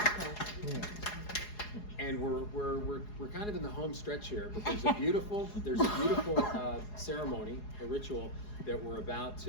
And we're kind of in the home stretch here, but there's a beautiful ceremony, a ritual that we're about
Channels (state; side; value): late; right; 4.8 ms